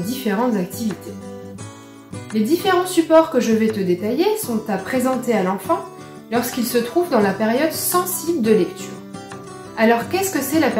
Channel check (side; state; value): both; identical; correlation 1.00